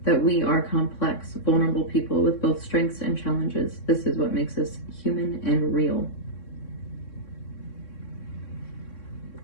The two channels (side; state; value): right; late; 3.6 ms